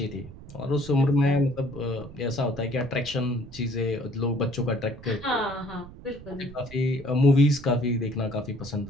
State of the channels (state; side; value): noise; right; rumble, 17 dB below the sound